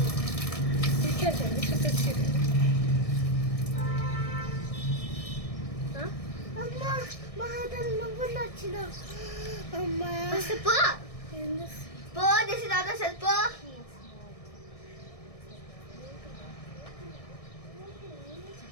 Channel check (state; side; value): late; right; 1.6 ms